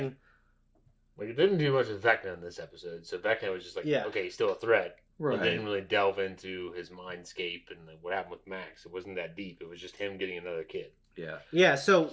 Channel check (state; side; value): identical; both; correlation 1.00